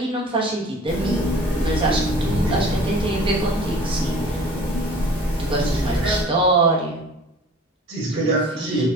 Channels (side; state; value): both; normal; correlation 0.46